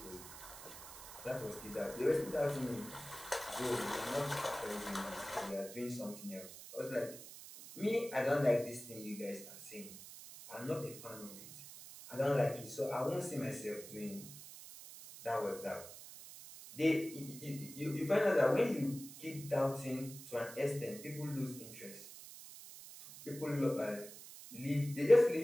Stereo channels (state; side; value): noise; right; hiss, 14 dB below the sound